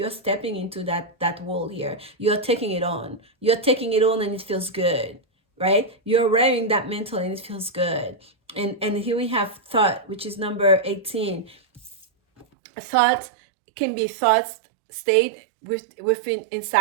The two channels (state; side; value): drops out; left; at 12.5 s